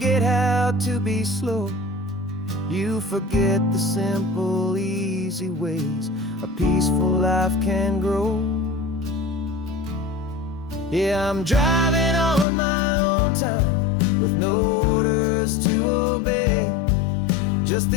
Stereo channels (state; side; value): drops out; right; at 12.5 s